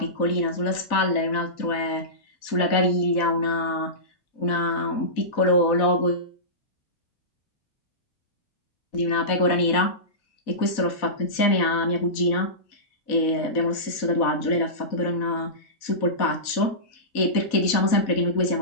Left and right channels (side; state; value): right; late; 4.1 ms